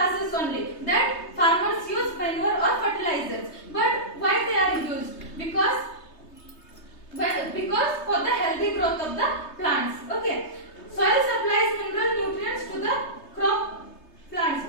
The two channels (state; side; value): late; right; 3.3 ms